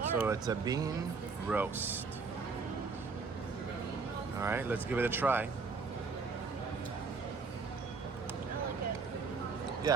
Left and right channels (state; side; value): quieter; left; 4.7 dB